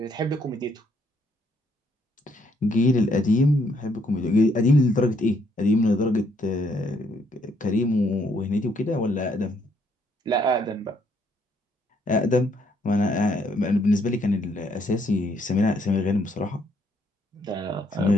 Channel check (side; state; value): both; normal; correlation 0.70